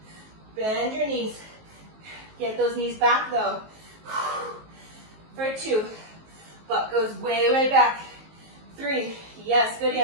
Bend your knees. Get those knees back though. For 2. Butt goes way, way back. 3. Yes, good,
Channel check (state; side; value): late; left; 19 ms